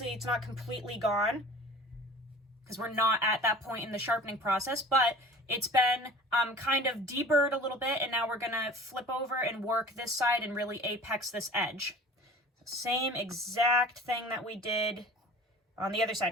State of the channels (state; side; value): normal; both; correlation 0.43